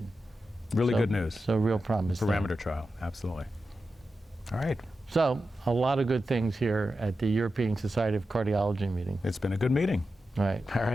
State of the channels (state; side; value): normal; both; correlation 0.91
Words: Really good news. So real promise. Parameter trial, absolutely. All right. So a lot of good things here at the European Society of Cardiology meeting. It's been a good meeting. Right. All